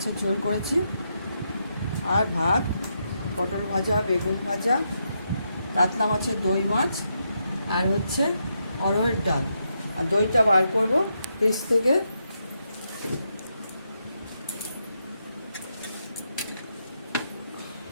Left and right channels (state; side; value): inverted; both; correlation -0.82